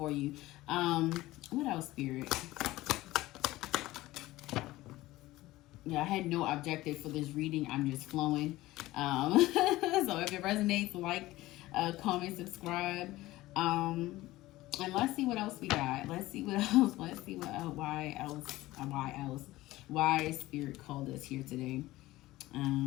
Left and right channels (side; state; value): right; quieter; 17.6 dB